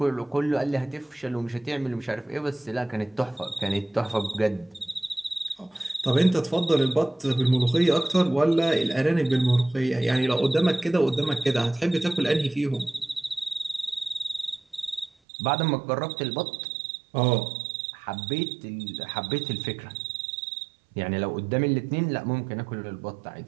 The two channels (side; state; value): left; drops out; at 15.1 s